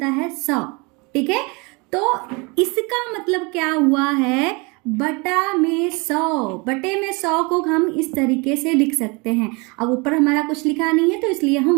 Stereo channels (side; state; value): left; quieter; 28.6 dB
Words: है 100। ठीक है, तो इसका मतलब क्या हुआ है? बटा में 100। बटे में 100 को हम इस तरीके से लिख सकते हैं। अब ऊपर हमारा कुछ लिखा नहीं है तो इसलिए